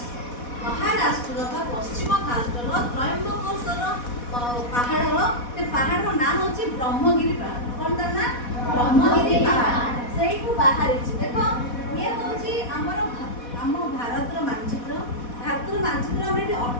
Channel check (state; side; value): late; right; 4.1 ms